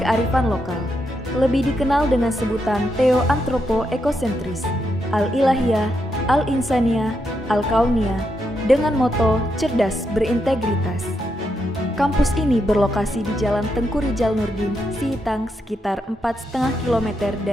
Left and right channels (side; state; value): both; normal; correlation 0.82